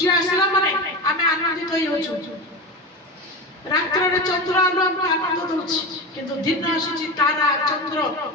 आसला माने हमें आनंदित होई होछु रात्र रे चंद्र आलो हम आनंद दोछि किंतु दिन आसुची तारा चंद्र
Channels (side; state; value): both; normal; correlation 0.23